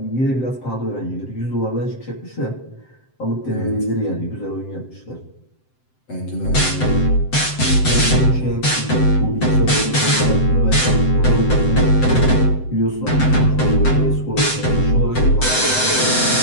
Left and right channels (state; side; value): late; right; 7.8 ms